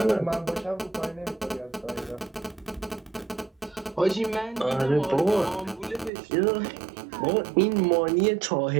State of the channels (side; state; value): left; drops out; at 6.1 s